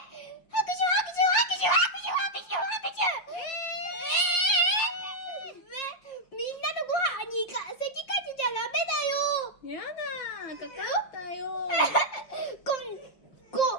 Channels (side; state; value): right; late; 5.7 ms